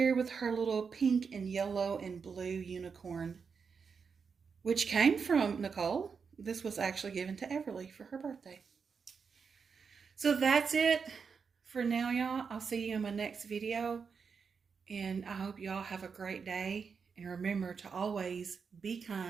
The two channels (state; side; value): quieter; left; 5.7 dB